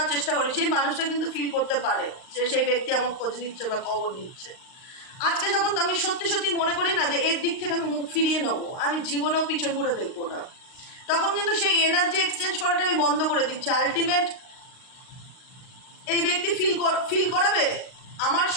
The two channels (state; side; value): late; right; 39 ms